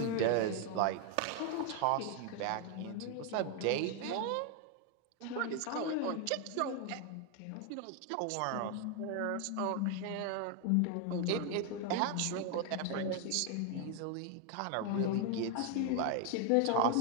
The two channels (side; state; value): both; different; correlation 0.01